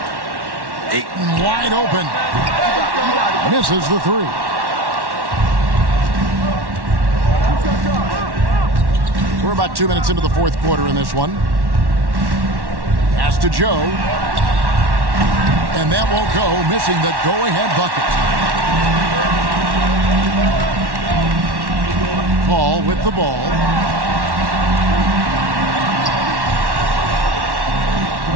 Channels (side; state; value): left; late; 1.1 ms